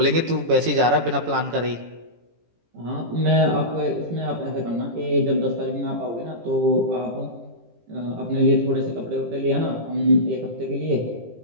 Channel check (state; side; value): late; left; 18 ms